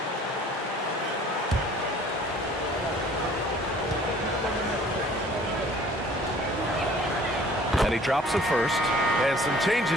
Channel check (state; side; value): normal; both; correlation 0.52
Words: And he drops it first. And some